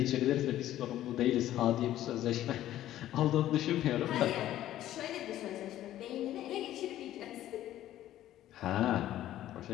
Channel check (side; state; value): right; quieter; 13.2 dB